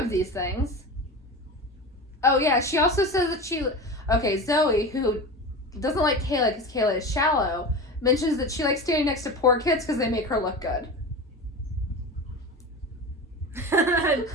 these things. Oh, yeah, she also says that she... Okay, Zoe, who doesn't like Kayla because Kayla is shallow, mentions that she likes standing next to poor kids because they make her look good. I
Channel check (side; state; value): both; normal; correlation 0.28